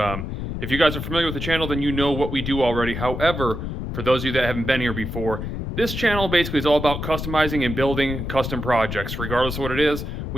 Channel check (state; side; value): noise; left; rumble, 5 dB below the sound